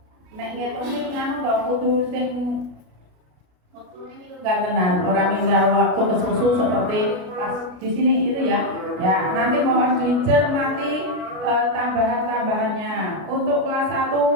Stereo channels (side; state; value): left; late; 33 ms